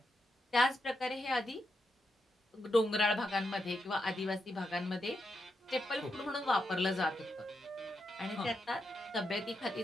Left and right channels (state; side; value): normal; both; correlation 0.84